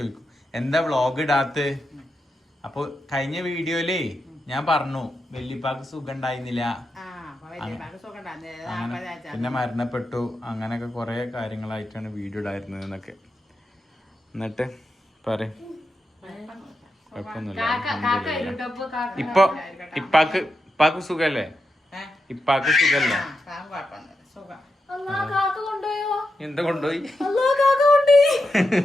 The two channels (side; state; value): both; normal; correlation 0.87